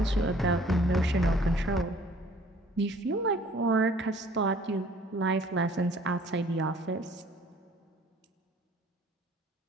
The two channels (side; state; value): both; normal; correlation 0.55